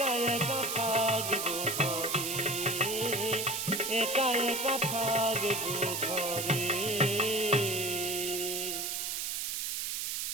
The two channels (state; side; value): noise; right; hiss, 2 dB below the sound